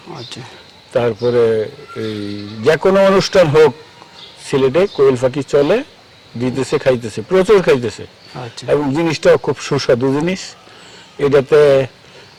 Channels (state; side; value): identical; both; correlation 1.00